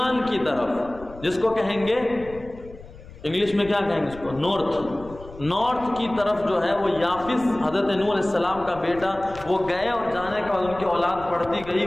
کی طرف، جس کو کہیں گے انگلش میں کیا کہیں گے اس کو، نارتھ کی طرف جو ہے وہ یافس حضرت نوح علیہ السلام کا بیٹا، وہ گئے اور جانے کے بعد ان کی اولاد بڑھتی گئی،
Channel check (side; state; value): left; noise; rumble, 18 dB below the sound